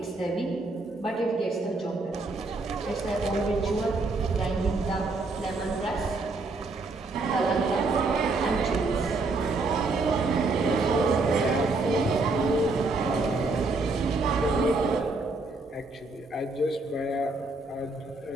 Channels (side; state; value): left; quieter; 3.4 dB